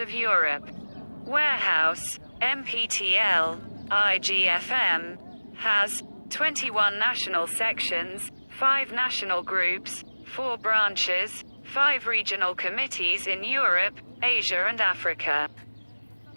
Europe. Warehouse, MPTL, IGFM, has 21 national sections, 5 national groups, 4 branches, 5 regional committees in Europe, Asia and Africa.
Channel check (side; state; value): both; inverted; correlation -1.00